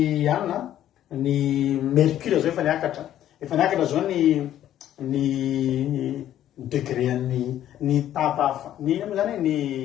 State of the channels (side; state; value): right; quieter; 11.8 dB